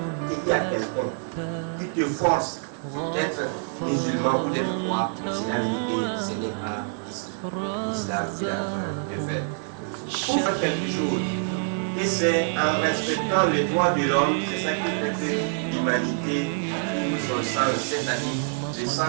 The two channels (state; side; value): silent; left; 61 dB below the other